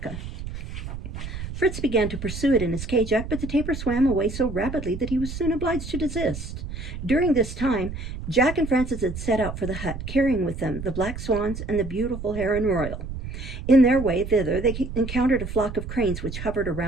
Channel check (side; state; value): right; noise; rumble, 8 dB below the sound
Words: Fritz began to pursue it in his Kjack, but the tapir swam away so rapidly that he was soon obliged to desist. During this time, Jack and Francis had set out for the hut, carrying with them the black swans and the beautiful heron royal. In their way thither, they encountered a flock of cranes which hovered